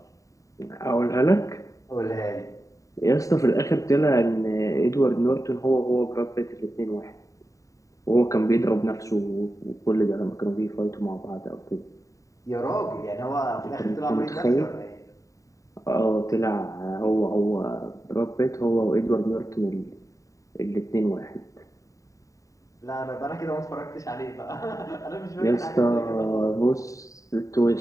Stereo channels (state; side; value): late; right; 0.16 ms